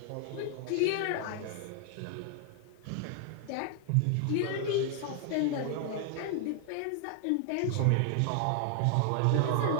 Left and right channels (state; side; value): different; both; correlation 0.00